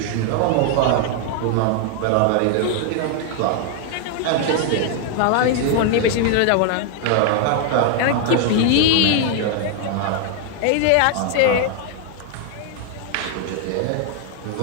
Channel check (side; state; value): both; different; correlation 0.00